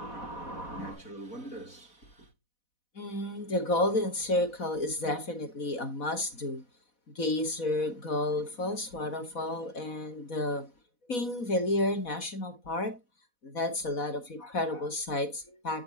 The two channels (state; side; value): late; right; 4.1 ms